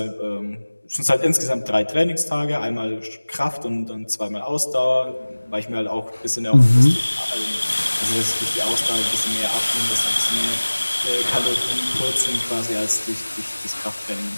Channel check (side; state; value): both; inverted; correlation -1.00